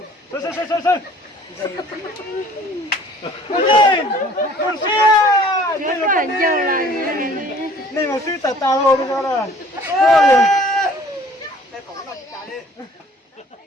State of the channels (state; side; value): normal; both; correlation 0.53